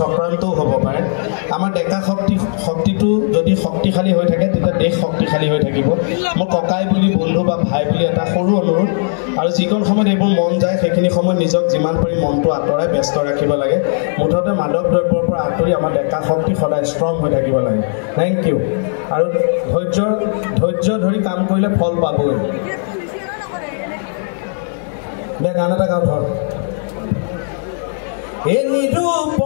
হ'ব পাৰে আমাৰ ডেকা শক্তিটো যদি শক্তিশালী হৈ থাকে তেতিয়া দেশ শক্তিশালী হৈ থাকিব মোৰ ককাই বুলি বন্ধু বা ভাই বুলি এটা সৰু অনুৰোধ আৰু যিকণ সময়ত এইবোৰ মন যায় সেইখিনি সময়ত নিজক যিমান পাৰি মনটো আঁতৰাই ব্যস্ত ৰাখিব লাগে মুঠতে মাদক দ্ৰব্যৰ পৰা আঁতৰি আমাৰ ডেকা শক্তি সদায় ষ্ট্ৰং হৈ থাকিব লাগে থেংক ইউ আৰু ধৈৰ্য ধৰি কাম কৰিলে ফল পাবই দে গান এটা গাওঁ ধৰ এ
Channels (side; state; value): right; silent; digital silence